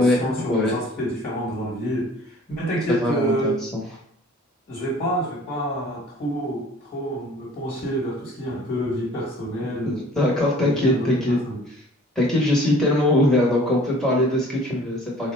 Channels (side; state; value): both; normal; correlation 0.50